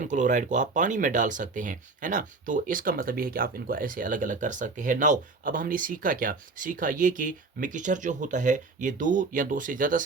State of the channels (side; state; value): left; quieter; 4.0 dB